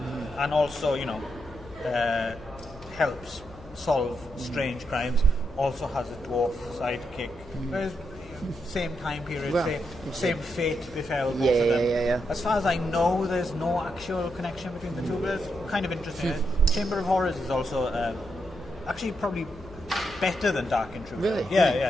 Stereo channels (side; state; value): left; noise; hum, 19 dB below the sound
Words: and also, helps solve strange crimes. Also has a dwarf sidekick. Same time period, same fate befell both of them. Yeah. As far as I know, there's no actual connection between the two, but it's kind of interesting. Chamber of Horrors is also actually probably better than Dark Intruder. Really?